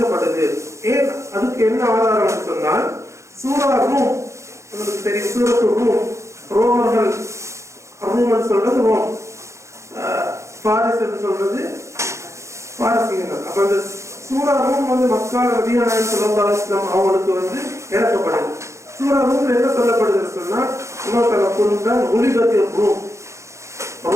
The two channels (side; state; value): left; late; 0.14 ms